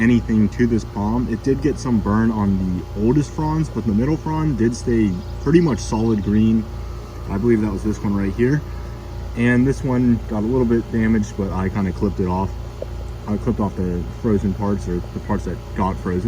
to this palm. It did get some burn on the oldest fronds, but the middle frond did stay pretty much solid green. I believe that was this one right here. And this one got a little bit damaged, but I kind of clipped it off. I clipped off the frozen parts, or the parts that got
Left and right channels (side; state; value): both; identical; correlation 1.00